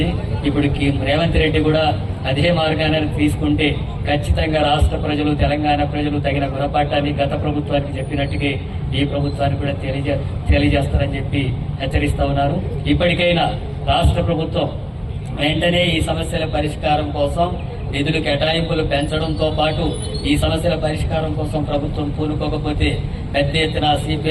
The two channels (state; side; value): identical; both; correlation 1.00